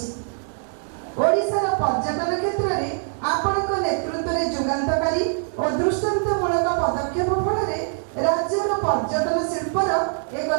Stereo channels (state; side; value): silent; left; 62 dB below the other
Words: ଓଡ଼ିଶାର ପର୍ଯ୍ୟଟନ କ୍ଷେତ୍ରରେ ଆପଣଙ୍କ ନେତୃତ୍ୱରେ ଯୁଗାନ୍ତକାରୀ ଓ ଦୃଷ୍ଟାନ୍ତମୂଳକ ପଦକ୍ଷେପ ଫଳରେ ରାଜ୍ୟର ପର୍ଯ୍ୟଟନ ଶିଳ୍ପର ଏକ